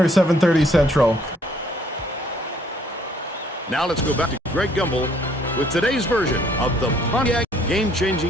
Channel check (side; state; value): both; normal; correlation 0.63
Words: 7:30 Central. Now let's go back to Greg Gumbel with today's version of the Pontiac